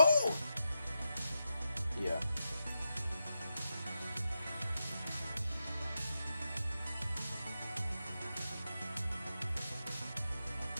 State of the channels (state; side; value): inverted; both; correlation -0.87